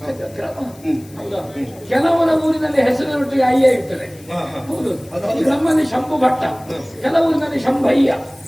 ಹೌದಾ? ಕೆಲವರ ಊರಿನಲ್ಲಿ ಹೆಸರಿನೊಟ್ಟಿಗೆ ಅಯ್ಯ ಇರ್ತದೆ. ಹೌದು, ನಮ್ಮಲ್ಲಿ ಶಂಭು ಭಟ್ಟ, ಕೆಲವೂರಿನಲ್ಲಿ ಶಂಭಯ್ಯ.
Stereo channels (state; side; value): noise; left; hiss, 24 dB below the sound